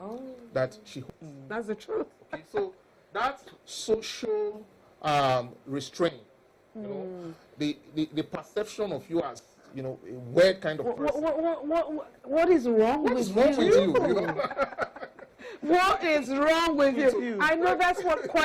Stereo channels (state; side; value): identical; both; correlation 1.00